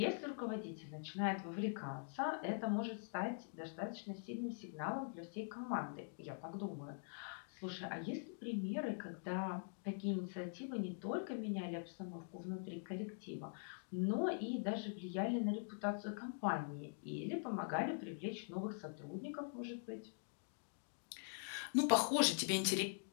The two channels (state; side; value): silent; right; digital silence